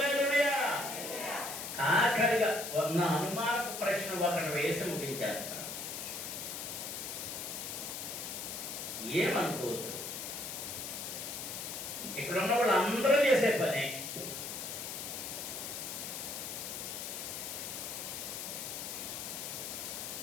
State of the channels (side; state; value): left; noise; hiss, 6 dB below the sound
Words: ఆఖరిగా నా అనుమానపు ప్రశ్న ఒకటి వేసి ముగించేస్తాను. ఏమనుకోవద్దు, ఇక్కడ ఉన్న వాళ్ళు అందరూ చేసే పనే.